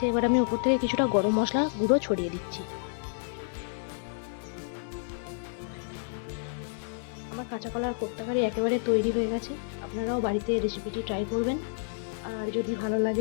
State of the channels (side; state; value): right; silent; 58 dB below the other